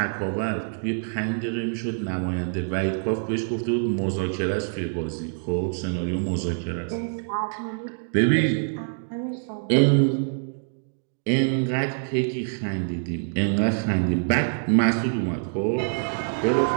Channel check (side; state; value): left; silent; digital silence